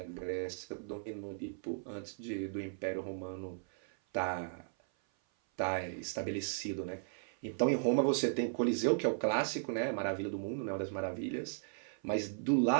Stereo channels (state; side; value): silent; left; 54 dB below the other